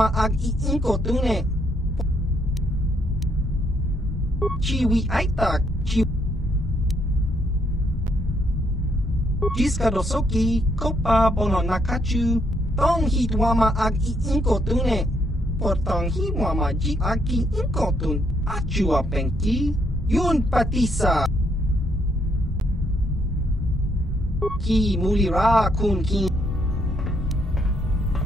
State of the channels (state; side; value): normal; both; correlation 0.73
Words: ag iinkotune. Chiwi aitak. Jiska dosoki, kopa bono nakachu. Tong hit wama ag iinkotune. Portang hi wama ji aki inkotun. Achua pengki. Yun patisa. Ki mulira kun ki.